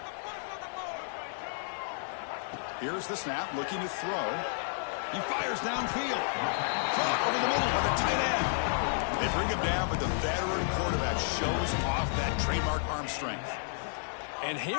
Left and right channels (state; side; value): silent; right; digital silence